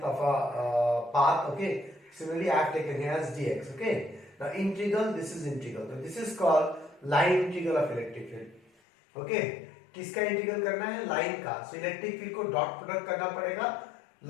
of a path. Okay, similarly I have taken here as dx. Okay, now integral, this is integral, so this is called line integral of electric field. Okay, किसका integral करना है? Line का. So electric field co dot product करना पड़ेगा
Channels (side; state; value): right; drops out; at 8.7 s